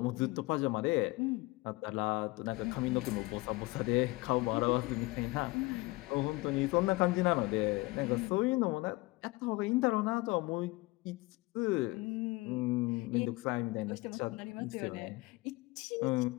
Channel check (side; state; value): right; quieter; 22.3 dB